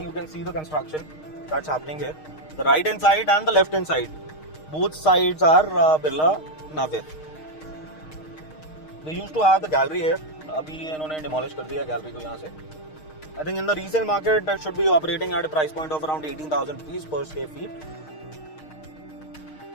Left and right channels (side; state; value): right; late; 6.5 ms